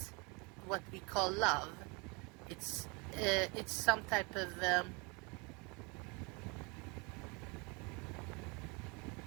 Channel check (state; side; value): quieter; left; 29.5 dB